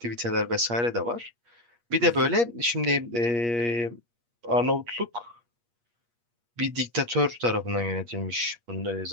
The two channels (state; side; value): late; left; 8.5 ms